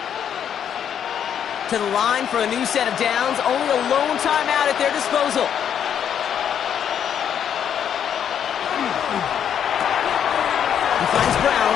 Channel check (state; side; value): quieter; right; 8.8 dB